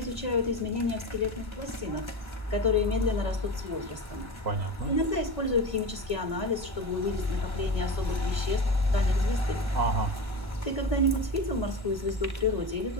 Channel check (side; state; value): left; late; 1.1 ms